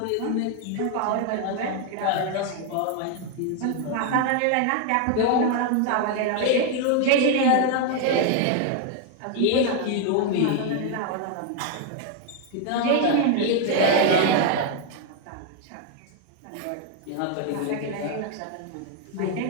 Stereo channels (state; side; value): different; both; correlation 0.00